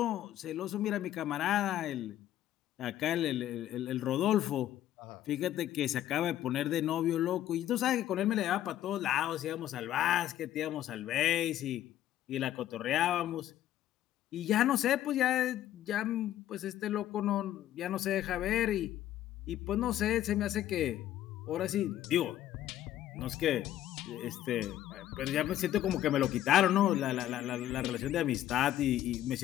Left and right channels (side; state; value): right; quieter; 12.6 dB